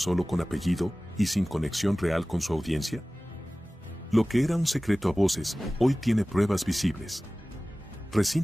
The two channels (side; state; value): both; normal; correlation 0.97